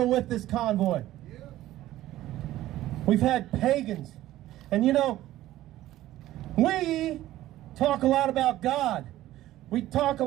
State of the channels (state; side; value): quieter; left; 14.8 dB